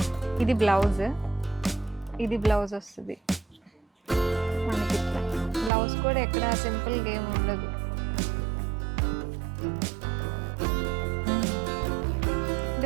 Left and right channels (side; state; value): left; drops out; at 5.7 s